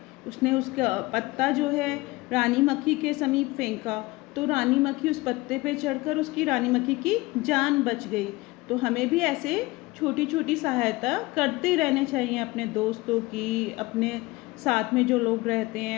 उसने उसका पत्ता जो है रानी मक्खी के समीप फेंका, तो रानी मक्खी उस पत्ते पे चढ़कर उसकी रानी मक्खी की जान बच गई। तो हमें भी ऐसे छोटी छोटी सहायता करते रहने चाहिए, अपने दोस्तों की, अपने साथ में जो लोग रहते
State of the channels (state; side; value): quieter; right; 21.5 dB